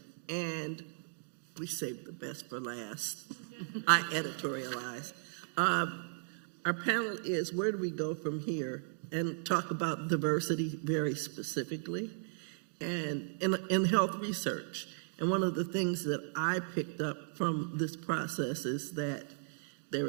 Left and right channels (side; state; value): left; silent; digital silence